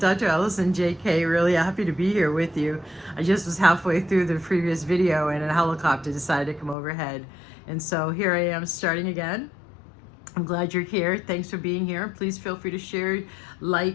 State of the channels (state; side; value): drops out; right; at 6.8 s